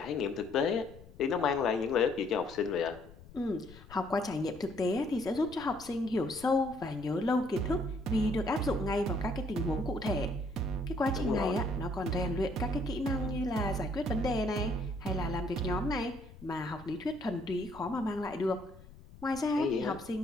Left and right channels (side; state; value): left; noise; rumble, 19 dB below the sound